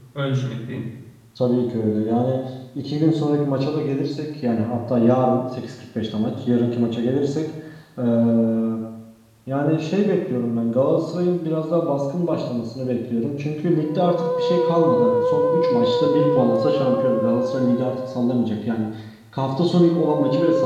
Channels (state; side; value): identical; both; correlation 1.00